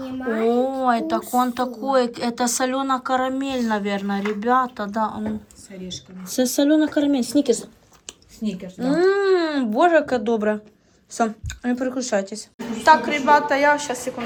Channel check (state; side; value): identical; both; correlation 1.00